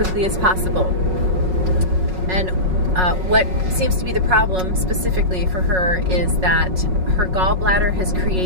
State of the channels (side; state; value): left; late; 5.4 ms